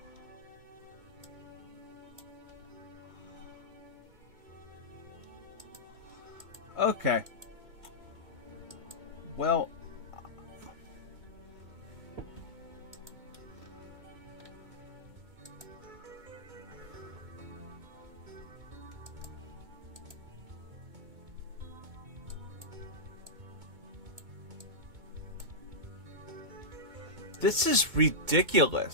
Okay. Well, this is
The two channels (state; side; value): late; left; 2.1 ms